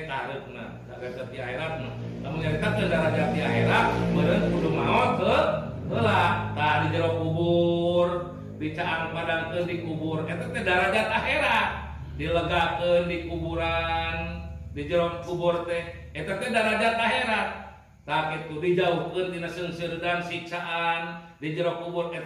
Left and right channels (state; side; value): identical; both; correlation 1.00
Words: kahareupna derajat di akhiratna lamun diangkatkeun derajat di akhirat meureun kudu maot heula tah di jero kubur dicaang padangkeun di kubur eta teh derajat akhirat dilegakeun di kuburan di jero kubur teh eta teh derajat akhirat tah kitu dijauhkeun tina seungseureun dan siksaan di jero kubur